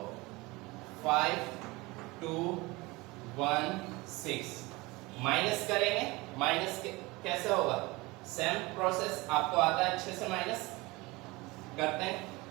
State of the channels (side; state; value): left; quieter; 23.0 dB